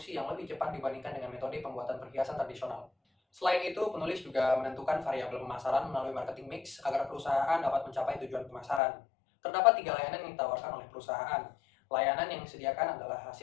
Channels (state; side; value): drops out; right; at 8.8 s